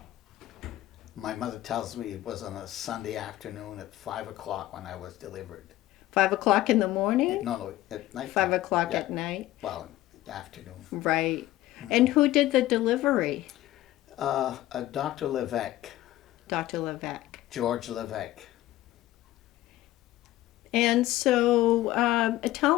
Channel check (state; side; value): quieter; right; 15.5 dB